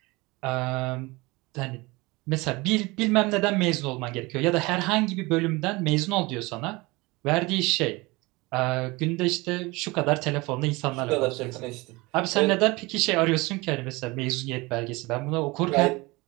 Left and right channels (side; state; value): left; quieter; 23.4 dB